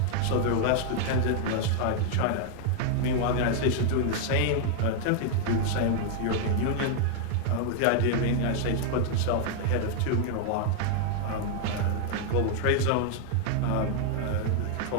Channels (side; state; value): both; different; correlation 0.00